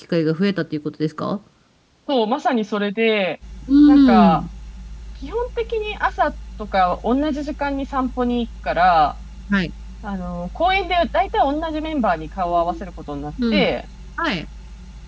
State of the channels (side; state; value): both; identical; correlation 1.00